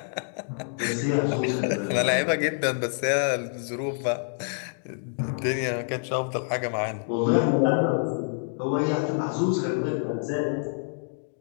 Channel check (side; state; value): right; silent; 60 dB below the other